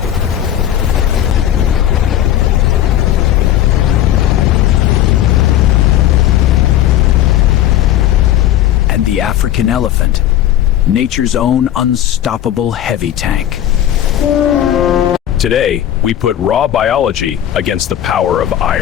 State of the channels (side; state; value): right; quieter; 11.7 dB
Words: And the African elephant, nature's own unstoppable heavy tank. Today, we put raw biology against the power of